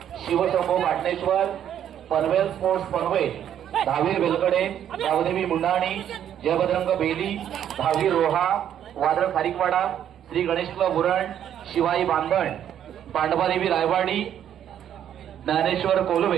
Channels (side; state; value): left; quieter; 10.0 dB